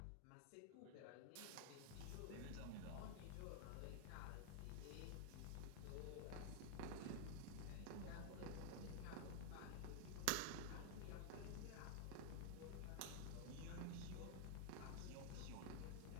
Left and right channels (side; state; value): both; different; correlation 0.00